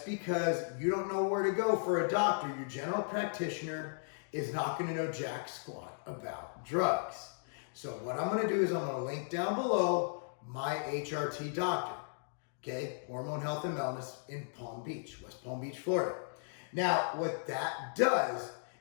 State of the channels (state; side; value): silent; right; digital silence